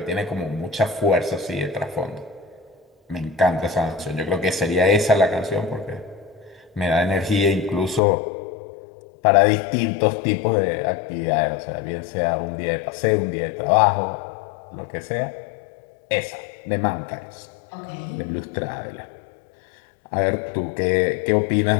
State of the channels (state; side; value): drops out; right; at 8.0 s